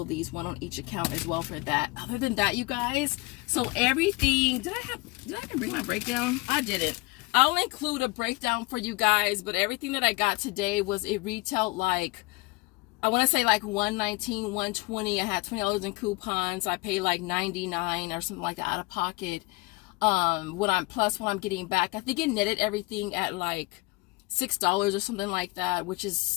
of these, one on each account as well for that. Other than that, you guys, so everything, did I even bring my breakdown? I didn't. I'll include a breakdown for you guys, but everything that I got today was, it retailed like, I want to say like $119, $120. I had $20 in coupons. I paid like $99 or something like that out of pocket. What I'm getting back, I think it netted everything at like $6 or something like that, which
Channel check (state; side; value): quieter; right; 24.5 dB